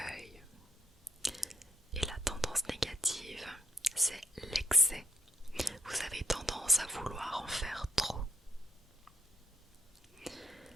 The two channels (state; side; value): normal; both; correlation 0.69